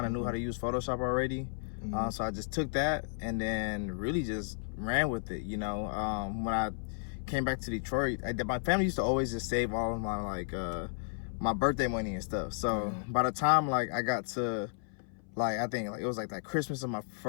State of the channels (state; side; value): silent; right; 56 dB below the other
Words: of knew how to use Photoshop already. So I just took that and then really just ran with it, you know. When I came back to Detroit, my family used to always just save all of my like, my birthday money and stuff. So by the time like I got to, like, I think like it was like that Christmas of my